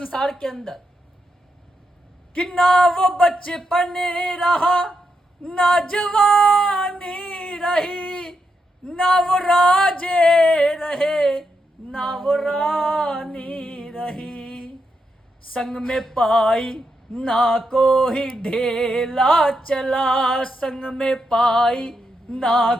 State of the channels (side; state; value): both; normal; correlation 0.83